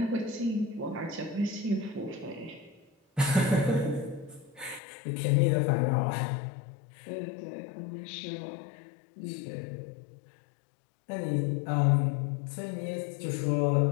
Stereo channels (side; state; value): right; drops out; at 4.8 s